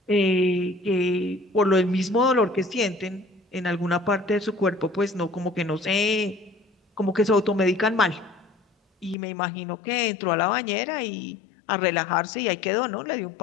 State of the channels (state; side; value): drops out; right; at 9.2 s